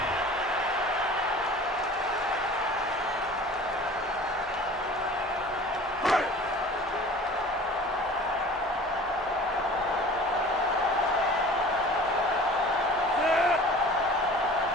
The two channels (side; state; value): both; normal; correlation 0.43